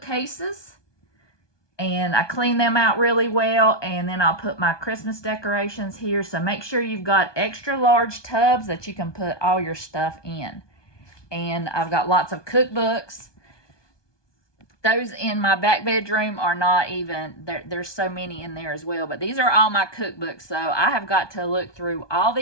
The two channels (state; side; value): late; right; 1.2 ms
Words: and I clean them out really well, and then I'll put my Christmas decorations here. So make sure you've got extra large tubs that you can put all your stuff in. And I've got lots of cookbooks. Those in my back bedroom are not even, there's so many in there as well. But these are all my cookbooks. So I have got to look through all